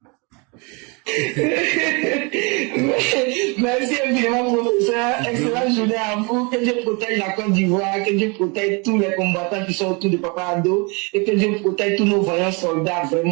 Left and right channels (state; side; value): quieter; left; 30.7 dB